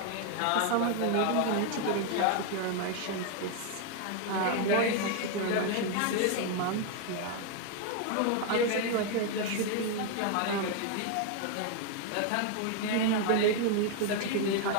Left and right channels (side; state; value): both; different; correlation 0.01